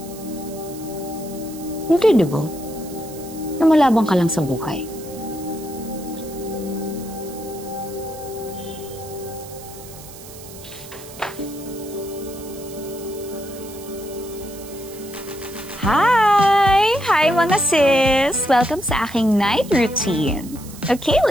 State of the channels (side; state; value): right; noise; hiss, 17 dB below the sound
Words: Hindi, di ba? Namalabang ka lang sa buhay. Hi mga sis! Welcome sa aking night routine. Okay,